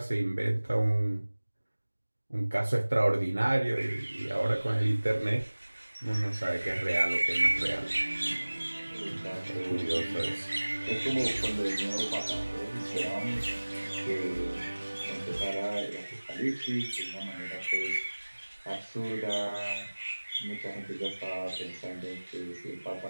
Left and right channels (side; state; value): both; inverted; correlation -1.00